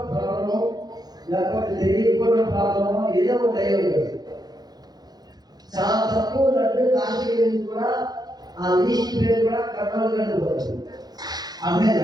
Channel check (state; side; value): late; left; 0.19 ms